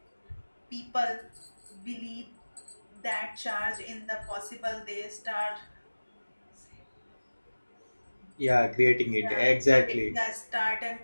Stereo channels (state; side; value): inverted; both; correlation -1.00